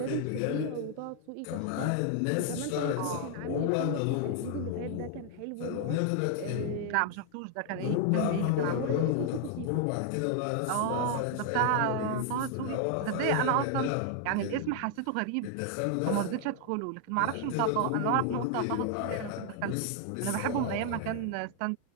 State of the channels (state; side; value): different; both; correlation 0.00